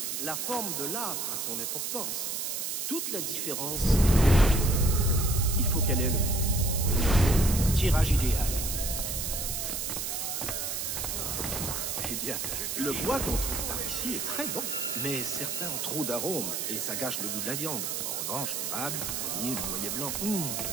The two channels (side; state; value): right; noise; hiss, 2 dB below the sound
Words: la forme de l'âtre a son importance. Toute la différence, Il faut qu'elle ait le tirage idéal. eh bien, le bois qu'on trouve par ici est très bon. Mais certains ont trop d'arômes et ça gâche le goût de la viande. En revanche, l'érable, le pommier, le noyer blanc,